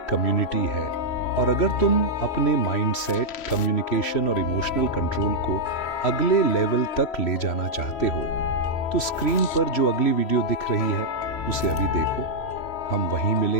कम्युनिटी है। और अगर तुम अपने माइंडसेट, कम्युनिकेशन और इमोशनल कंट्रोल को अगले लेवल तक ले जाना चाहते हो, तो स्क्रीन पर जो अगली वीडियो दिख रही है उसे अभी देखो। हम वहीं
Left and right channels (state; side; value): late; right; 3.1 ms